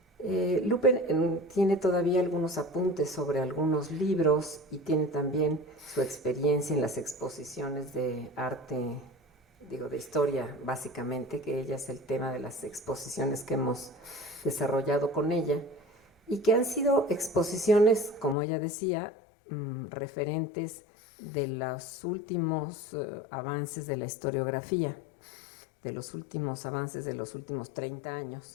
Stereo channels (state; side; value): drops out; right; at 18.4 s